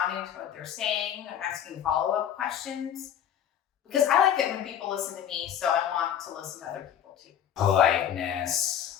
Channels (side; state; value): right; quieter; 9.6 dB